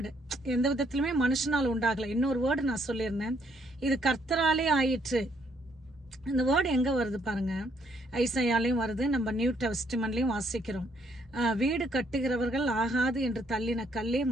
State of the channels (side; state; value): both; normal; correlation 0.69